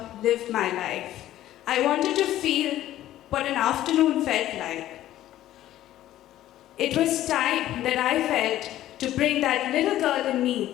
live my life. I wanted to feel what an afternoon felt like. It was time that I felt to bring that little girl in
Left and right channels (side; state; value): right; quieter; 13.5 dB